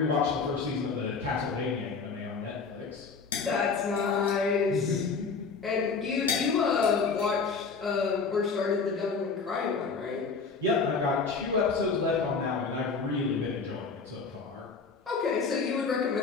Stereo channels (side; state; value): right; quieter; 4.9 dB